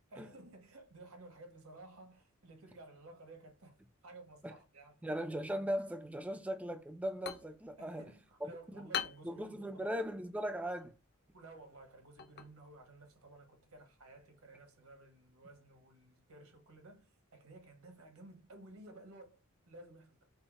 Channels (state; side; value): normal; both; correlation 0.71